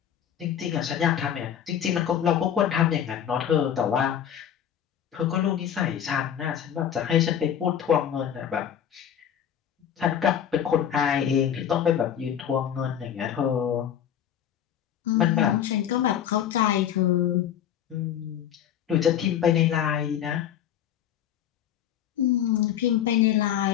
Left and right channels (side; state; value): right; quieter; 9.6 dB